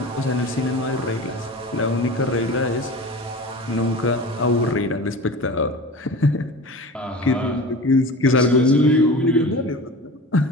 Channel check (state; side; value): normal; both; correlation 0.35